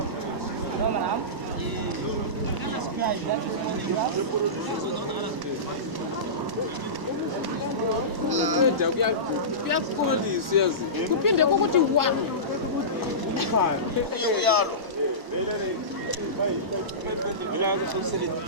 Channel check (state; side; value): late; left; 1.0 ms